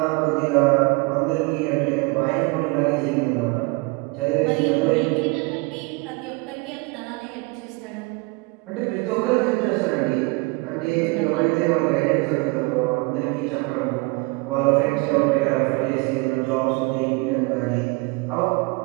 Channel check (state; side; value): quieter; left; 27.0 dB